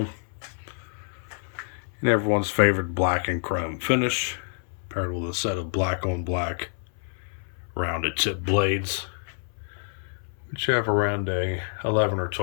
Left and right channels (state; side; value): silent; right; 60 dB below the other